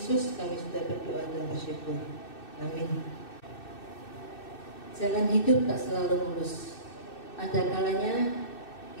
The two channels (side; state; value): right; late; 2.6 ms